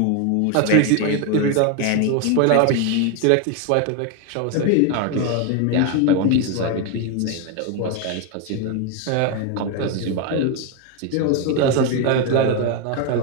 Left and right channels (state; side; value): different; both; correlation 0.01